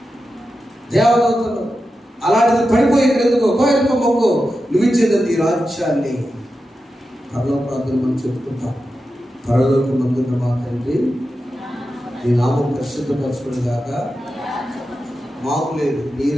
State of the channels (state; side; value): normal; both; correlation 0.90